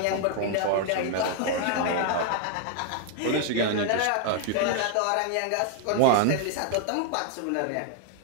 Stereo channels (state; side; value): different; both; correlation 0.00